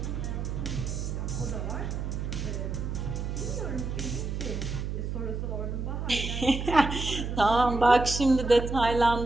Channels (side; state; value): right; noise; hum, 3 dB below the sound